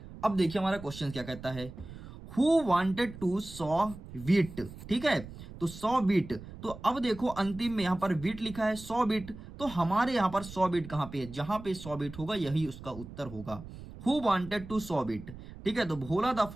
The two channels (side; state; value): right; noise; rumble, 14 dB below the sound